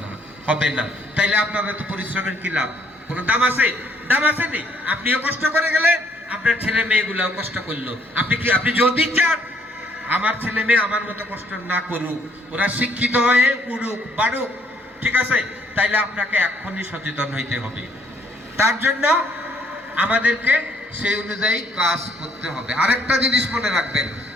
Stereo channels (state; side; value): normal; both; correlation 0.66